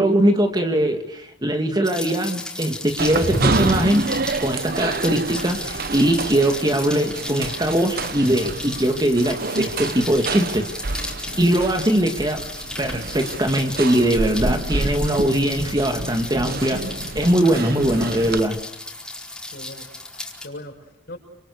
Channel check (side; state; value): both; normal; correlation 0.67